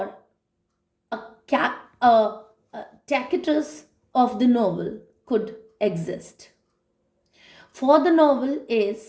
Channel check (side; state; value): both; identical; correlation 1.00